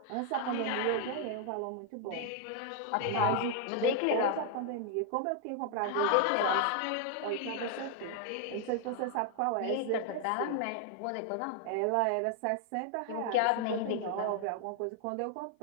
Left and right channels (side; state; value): both; different; correlation 0.00